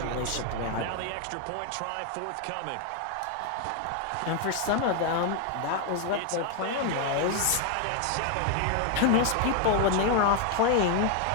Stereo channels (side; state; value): both; different; correlation 0.01